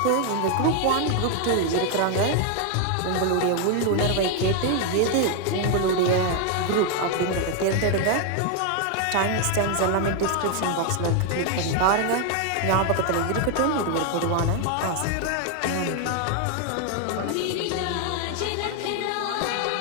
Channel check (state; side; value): different; both; correlation 0.00